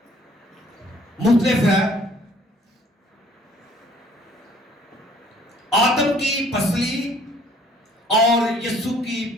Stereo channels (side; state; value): both; normal; correlation 0.58